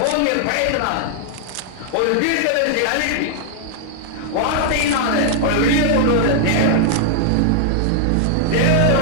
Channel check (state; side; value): different; both; correlation -0.01